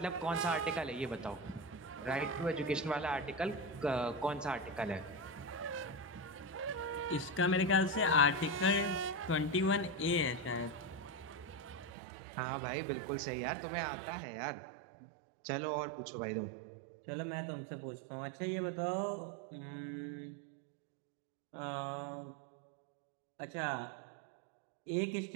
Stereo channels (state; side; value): drops out; left; at 11.9 s